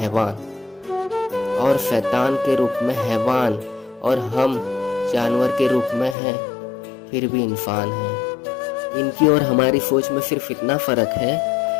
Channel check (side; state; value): right; drops out; at 6.2 s